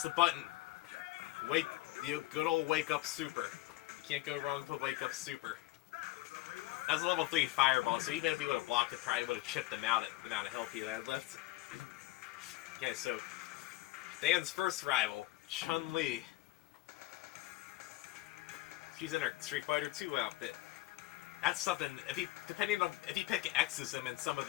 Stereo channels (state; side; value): quieter; right; 18.1 dB